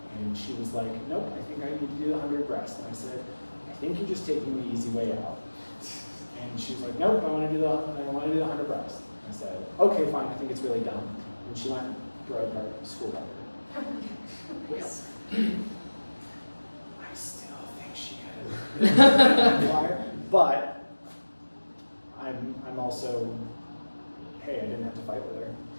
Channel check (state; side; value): inverted; both; correlation -1.00